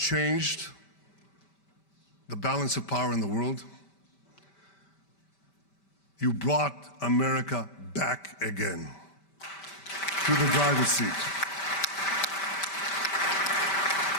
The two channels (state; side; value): late; right; 5.1 ms